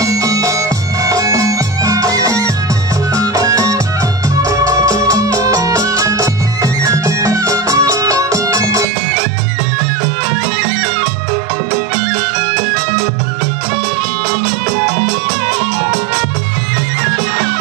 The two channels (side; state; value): left; drops out; at 8.8 s